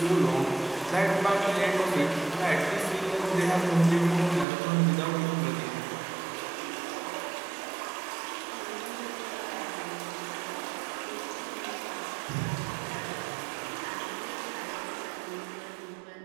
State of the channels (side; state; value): left; drops out; at 4.5 s